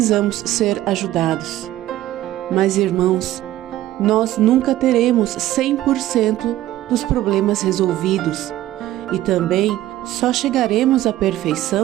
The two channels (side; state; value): left; quieter; 14.5 dB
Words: ser ajudados. Mas, irmãos, nós nunca teremos 100% dos problemas resolvidos e também só chegaremos à